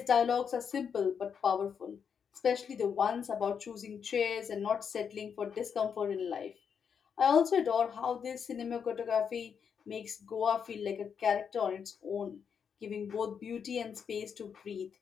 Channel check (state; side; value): quieter; right; 7.0 dB